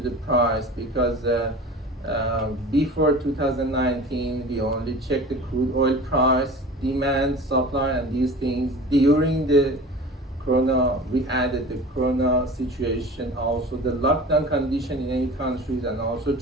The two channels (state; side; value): normal; both; correlation 0.38